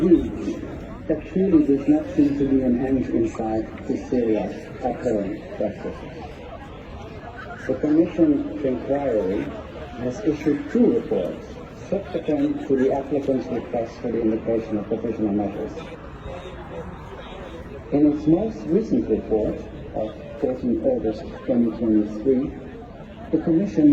there truly does not seem to be an end in sight to Syria's current practices. The Commission's inquiry has issued 2 reports subsequent to the applicant's request for the invocation of provisional measures. In its most recent report of 14 August 2023, the Commission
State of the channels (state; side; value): identical; both; correlation 1.00